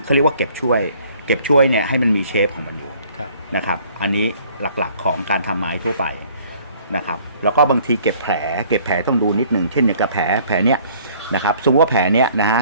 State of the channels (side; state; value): both; inverted; correlation -0.57